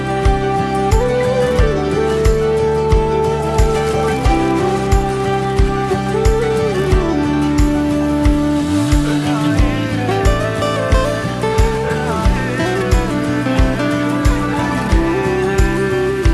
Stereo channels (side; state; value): both; identical; correlation 1.00